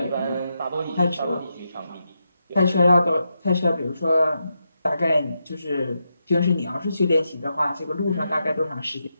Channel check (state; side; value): inverted; both; correlation -0.85